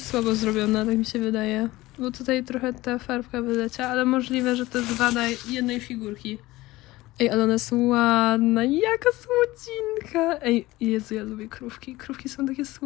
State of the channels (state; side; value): quieter; right; 18.7 dB